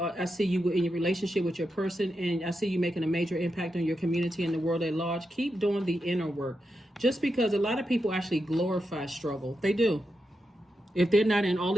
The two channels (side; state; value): both; normal; correlation 0.87